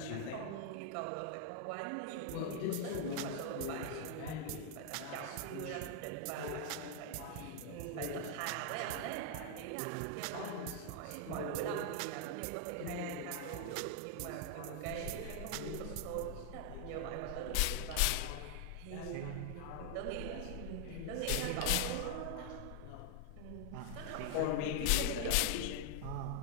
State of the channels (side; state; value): both; different; correlation 0.00